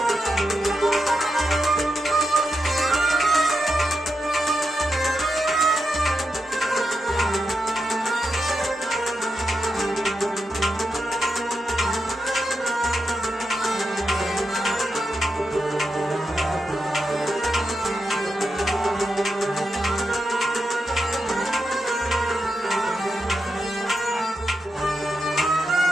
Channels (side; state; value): both; normal; correlation 0.87